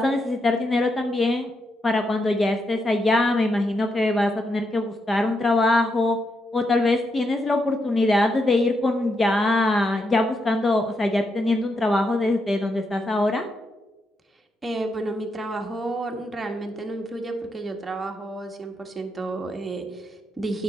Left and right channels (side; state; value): both; normal; correlation 0.82